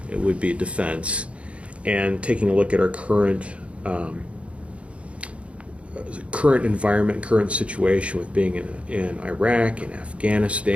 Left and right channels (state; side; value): late; left; 0.062 ms